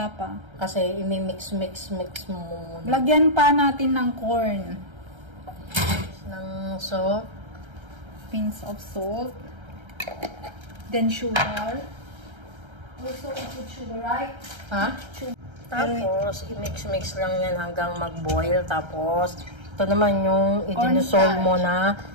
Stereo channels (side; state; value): left; late; 1.3 ms